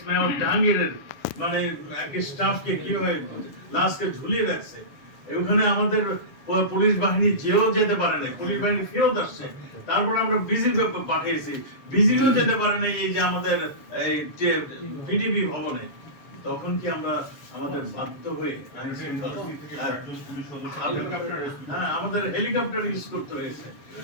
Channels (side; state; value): right; late; 7.1 ms